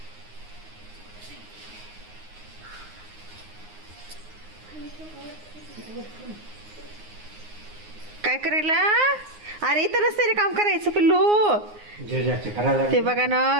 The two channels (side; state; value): left; late; 9.6 ms